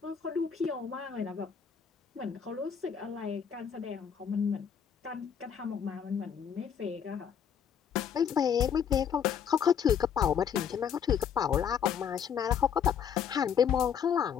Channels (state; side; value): quieter; right; 7.8 dB